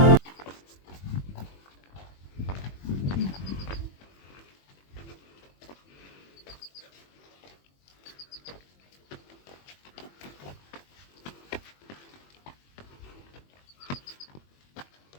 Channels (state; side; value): late; right; 21 ms